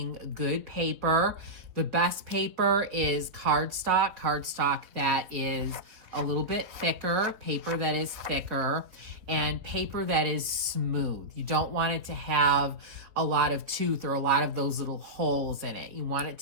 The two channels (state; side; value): late; left; 4.3 ms